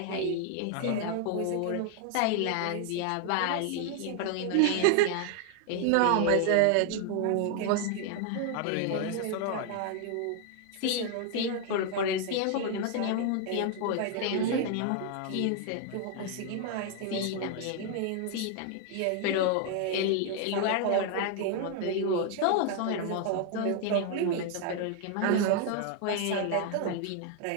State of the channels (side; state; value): both; different; correlation 0.00